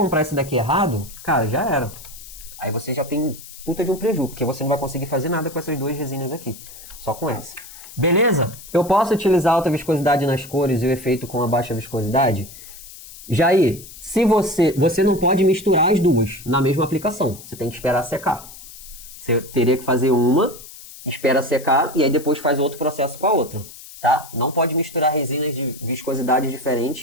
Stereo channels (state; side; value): noise; left; hiss, 16 dB below the sound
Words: esse daqui errado, cara, já era. Aí você já tem puta de um prejuízo, porque você não vai conseguir fazer nada com essas duas resinas aqui. Só com essa. Beleza? Eu posso utilizar alta viscosidade nas cores e o efeito com a baixa viscosidade? Jair, se você não pode misturar as duas na mesma aplicação. Você tem que esperar secar. Você teria que fazer uma, espera secar e aí depois faz outro processo com a outra. Tá? Não pode misturar resinas de viscosidade